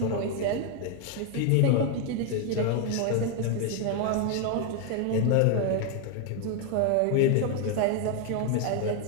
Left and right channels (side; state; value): both; different; correlation 0.01